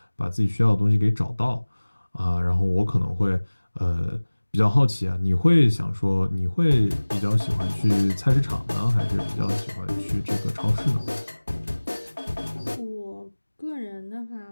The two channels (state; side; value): inverted; both; correlation -1.00